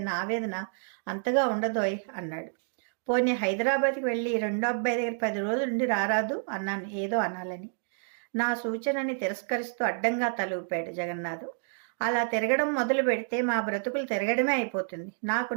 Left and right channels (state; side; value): silent; left; digital silence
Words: ఆవేదన అంతగా ఉండదోయ్ అన్నాడు. పోనీ హైదరాబాద్కి వెళ్ళి 2వ అబ్బాయి దగ్గర 10 రోజులు ఉండి రారాదు అన్నాను ఏదో అనాలని. నా సూచనని తిరస్కరిస్తూ అడ్డంగా తల ఊపాడు జగన్నాథం. అలా తిరగడం మొదలు పెడితే మా బ్రతుకులు తిరగడమే అయిపోతుంది. నాకు